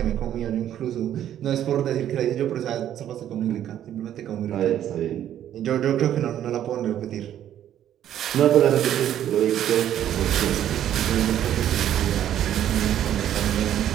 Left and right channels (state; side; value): quieter; left; 11.0 dB